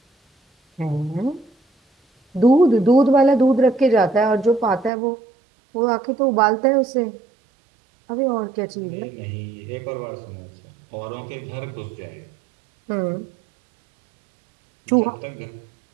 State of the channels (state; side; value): drops out; left; at 4.9 s